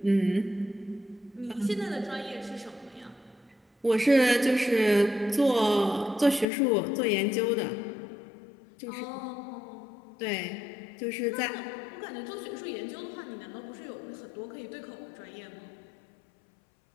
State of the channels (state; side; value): drops out; right; at 6.5 s